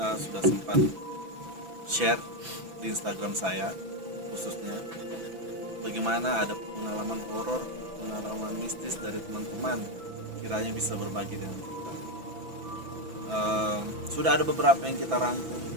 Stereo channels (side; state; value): left; late; 6.0 ms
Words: sudah sempat share di Instagram saya khususnya bagaimana ada pengalaman horor, pengalaman mistis dari teman-teman, kiranya bisa berbagi dengan kita. Sudah ada beberapa yang kita rangkum